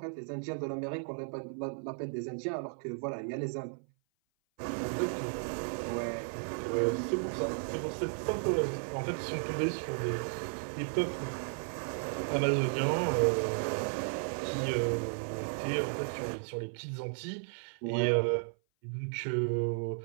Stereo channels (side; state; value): left; silent; 55 dB below the other